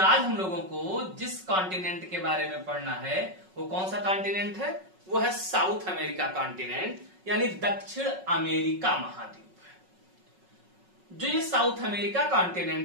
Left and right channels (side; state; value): left; late; 5.4 ms